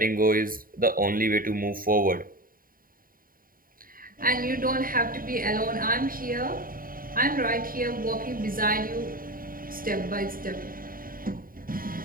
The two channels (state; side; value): late; left; 0.41 ms